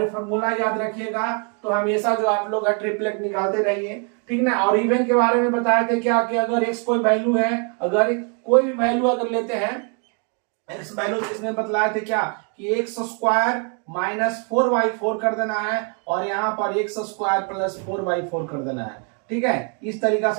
ये फॉर्मूला याद रखिएगा। तो हमेशा जो आप लोग ट्रिपलेट निकालते रहिए, ठीक ना। और इवन के बारे में बताए थे क्या कि अगर x कोई वैल्यू है, अगर कोई भी वैल्यू अगर लेते हैं x वैल्यू, इसमें बतलाए थे क्या कि एक्स स्क्वायर माइनस 4/4 कर देना है और यहाँ पर एक्स स्क्वायर प्लस 4/4 कर देना है। ठीक है, इस तरीका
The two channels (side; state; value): left; quieter; 37.9 dB